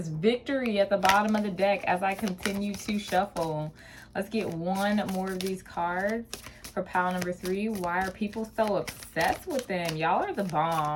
victory at the bottom of the deck as I continue to shuffle. Let's get one more of these cards for pile number 3. Why are people so obsessed with them? Y'all are the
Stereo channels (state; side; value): identical; both; correlation 1.00